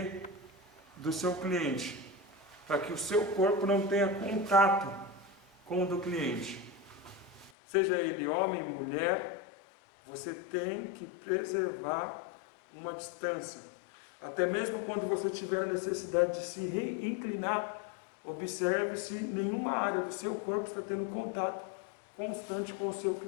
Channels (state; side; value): drops out; right; at 7.5 s